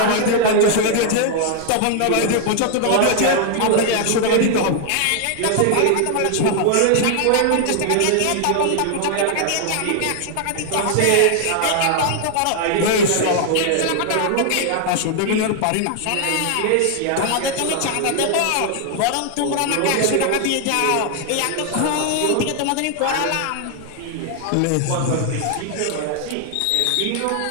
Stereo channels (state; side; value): different; both; correlation 0.00